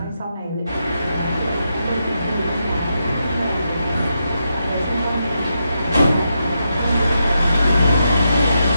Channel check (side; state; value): both; inverted; correlation -0.84